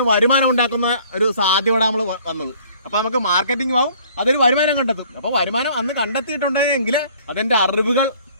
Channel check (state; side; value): inverted; both; correlation -0.56